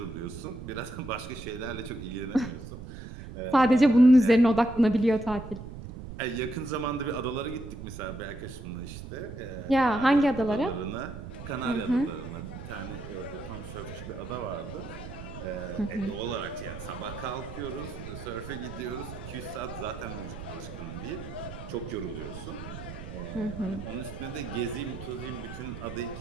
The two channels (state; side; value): noise; right; rumble, 11 dB below the sound